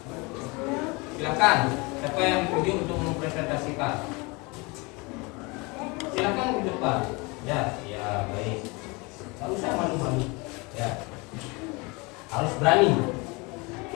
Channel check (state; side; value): quieter; right; 27.0 dB